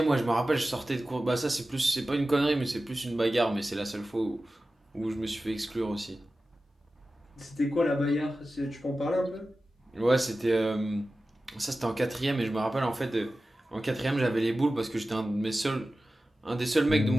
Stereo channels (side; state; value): both; normal; correlation 0.95